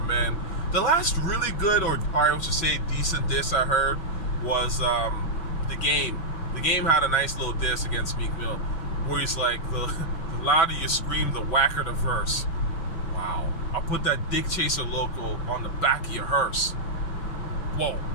man. The last really good, or I should say decent diss I heard was The Game. The Game had a nice little diss against Meek Mill, where he's like, the louder you scream, the whacker the verse. Wow. I'll put that Dick Chaser logo on the back of your hearse. Whoa,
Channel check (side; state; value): right; late; 6.1 ms